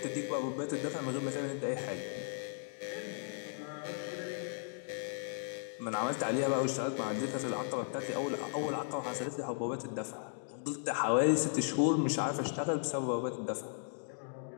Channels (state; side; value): silent; right; digital silence